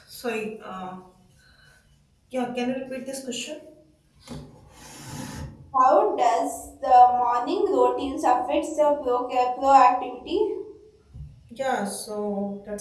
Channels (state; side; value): identical; both; correlation 1.00